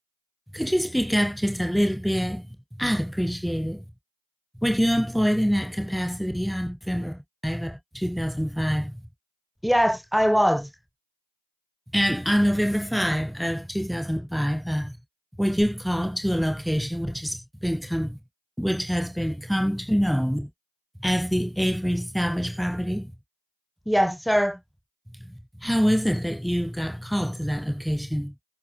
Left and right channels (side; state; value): both; identical; correlation 1.00